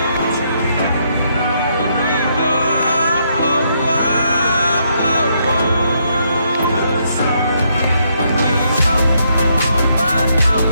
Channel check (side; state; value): both; inverted; correlation -0.75